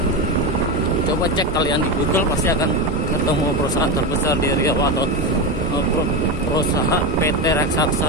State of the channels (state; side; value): normal; both; correlation 0.16